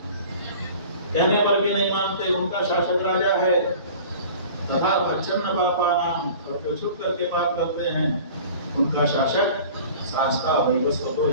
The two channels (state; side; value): inverted; both; correlation -0.43